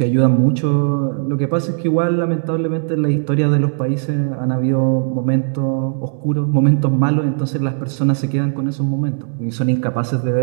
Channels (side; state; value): left; silent; digital silence